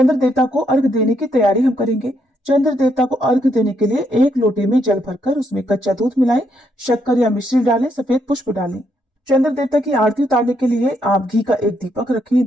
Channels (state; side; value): normal; both; correlation 0.75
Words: देवता को अर्घ देने की तैयारी हम करेंगे। चंद्र देवता को अर्घ देने के लिए एक लोटे में जल भरकर उसमें कच्चा दूध मिलाएं, शक्कर या मिश्री डालें, सफेद पुष्प डालें। चंद्र देवता की आरती उतारने के लिए आप घी का एक दीपक रखें,